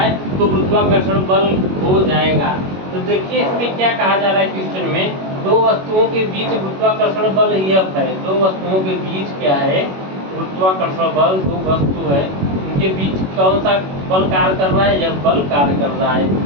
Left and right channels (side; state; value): left; late; 21 ms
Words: तो गुरुत्वाकर्षण बल हो जाएगा। तो देखिए इसमें क्या कहा जा रहा है क्वेश्चन में, दो वस्तुओं के बीच गुरुत्वाकर्षण बल F है। दो वस्तुओं के बीच क्या है, गुरुत्वाकर्षण बल, दो वस्तु है, उनके बीच कौन सा बल कार्य कर रहा है, यह बल कार्य कर रहा है।